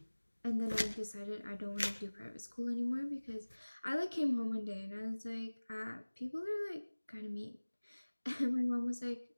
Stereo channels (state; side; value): inverted; both; correlation -1.00